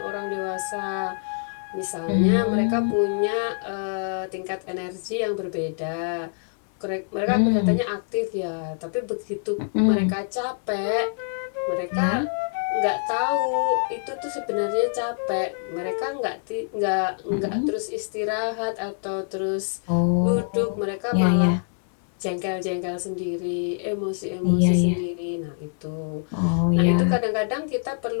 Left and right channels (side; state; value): right; silent; 62 dB below the other